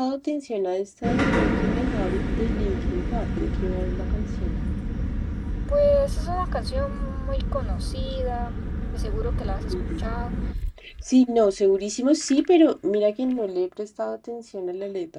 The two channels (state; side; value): identical; both; correlation 1.00